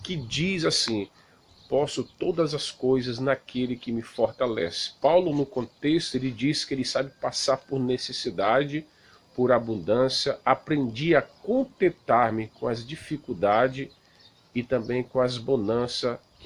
que diz assim: posso todas as coisas naquele que me fortalece. Paulo, no contexto, ele diz que ele sabe passar por necessidade, por abundância, aprendi a contentar-me com as dificuldades e também com as bonanças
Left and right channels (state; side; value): identical; both; correlation 1.00